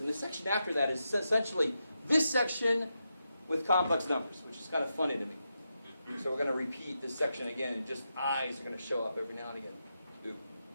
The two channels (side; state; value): both; inverted; correlation -0.86